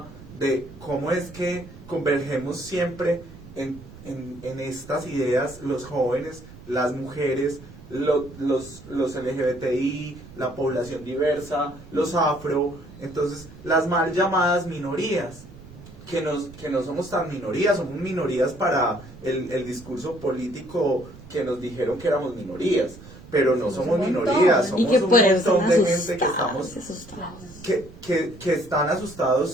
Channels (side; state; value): right; noise; rumble, 18 dB below the sound